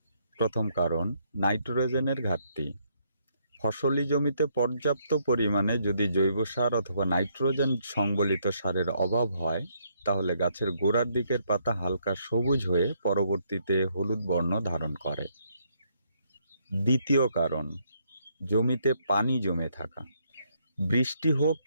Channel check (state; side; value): inverted; both; correlation -0.72